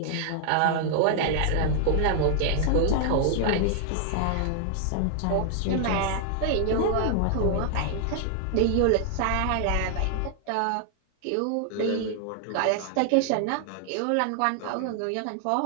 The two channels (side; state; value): both; different; correlation 0.00